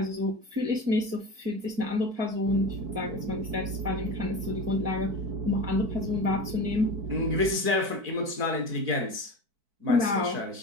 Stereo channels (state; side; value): late; left; 4.6 ms